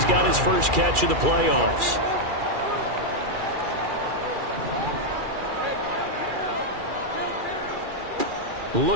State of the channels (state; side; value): late; left; 2.4 ms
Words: got his first catch of the playoffs.